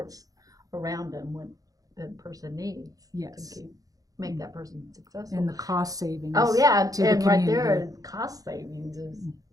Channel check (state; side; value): late; left; 0.17 ms